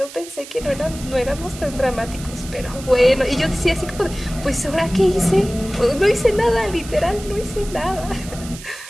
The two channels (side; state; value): right; noise; hiss, 15 dB below the sound